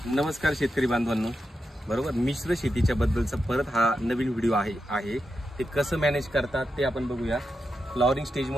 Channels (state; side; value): normal; both; correlation 0.87